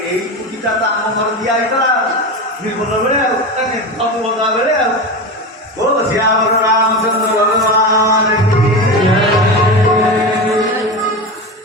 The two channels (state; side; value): normal; both; correlation 0.22